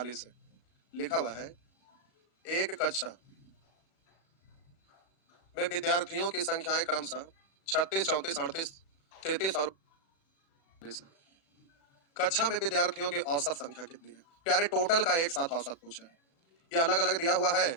है। लिखा हुआ है, एक कक्षा में विद्यार्थियों की संख्याएं क्रमशः 36, 34, 38, 33 और 39 है। कक्षा में विद्यार्थियों की औसत संख्या कितनी है? प्यारे टोटल का एक साथ औसत पूछा है। ये अलग अलग दिया हुआ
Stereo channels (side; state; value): right; late; 36 ms